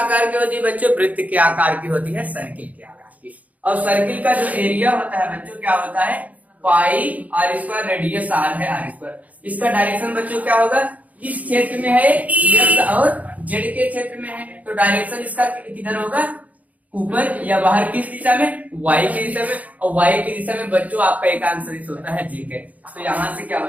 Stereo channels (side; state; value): left; late; 0.074 ms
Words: की होती है बच्चों, वृत्त के आकार की होती है, सर्किल के आकार की। और सर्किल का जो एरिया होता है बच्चों क्या होता है पाई आर स्क्वायर, रेडियस आर है आर स्क्वायर। इसका डायरेक्शन बच्चों क्या होगा, इस क्षेत्र में है एक्स और जेड के क्षेत्र में है, तो डायरेक्शन इसका किधर होगा, ऊपर या बाहर, किस दिशा में, वाई की दिशा में। और वाई की दिशा में बच्चों आपका एक आंसर होता है जे के, तो यहाँ से क्या